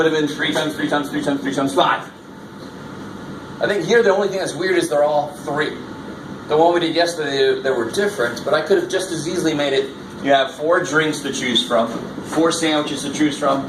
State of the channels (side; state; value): both; identical; correlation 1.00